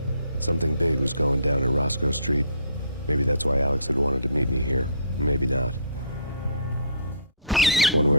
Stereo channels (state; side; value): inverted; both; correlation -0.52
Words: Something big was going down at Roscoe Street. Maybe that's why Alex had wanted to meet me here. Maybe not. One